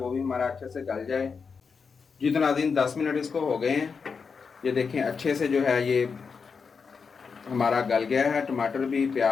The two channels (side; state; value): right; quieter; 5.5 dB